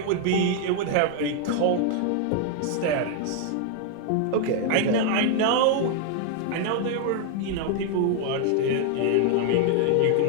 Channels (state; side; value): different; both; correlation 0.00